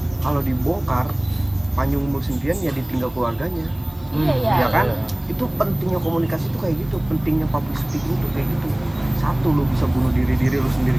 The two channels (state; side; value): noise; right; hiss, 29 dB below the sound